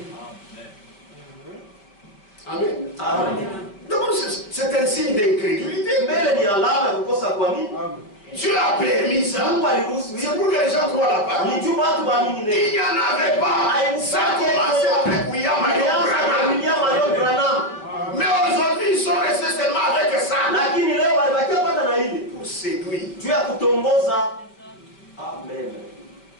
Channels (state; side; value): late; right; 5.0 ms